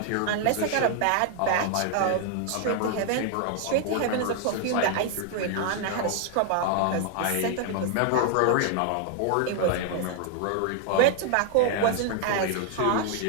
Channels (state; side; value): different; both; correlation 0.00